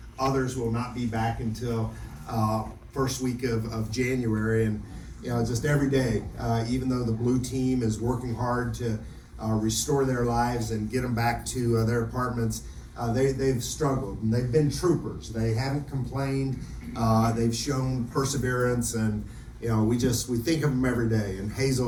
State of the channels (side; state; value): both; identical; correlation 1.00